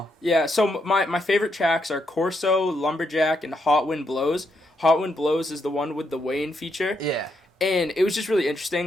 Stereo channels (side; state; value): both; normal; correlation 0.78